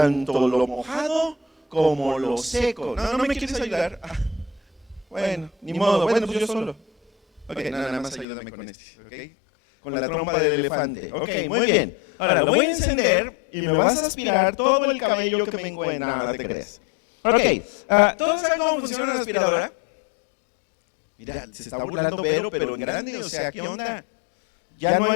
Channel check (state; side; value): drops out; right; at 8.2 s